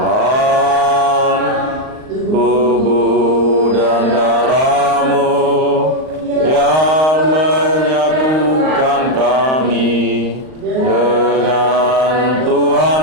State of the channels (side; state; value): left; late; 38 ms